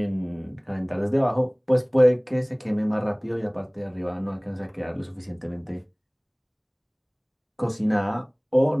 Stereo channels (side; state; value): both; identical; correlation 1.00